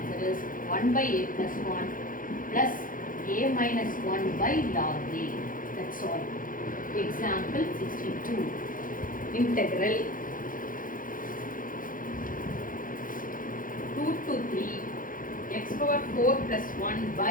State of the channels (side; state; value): right; late; 0.40 ms